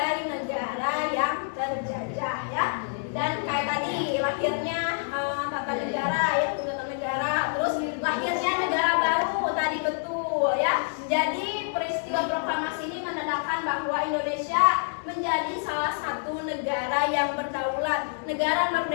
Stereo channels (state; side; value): silent; right; 59 dB below the other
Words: negara yang terjajah ya. Dan kayak tadi lahirnya tata negara ya, tata negara, terus lahirnya negara baru tadi betul ya. Jadi peristiwa proklamasi ini menandakan bahwa Indonesia menjadi salah satu negara yang berdaulat, negara